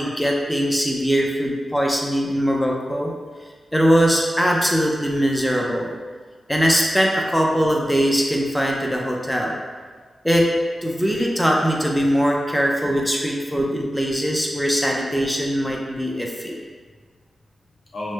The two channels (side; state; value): both; normal; correlation 0.94